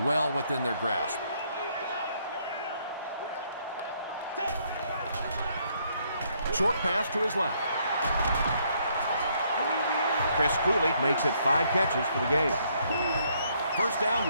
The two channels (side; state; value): both; inverted; correlation -0.70